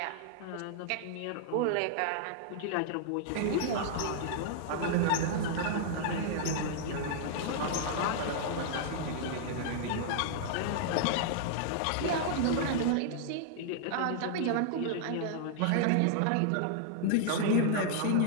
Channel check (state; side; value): different; both; correlation -0.01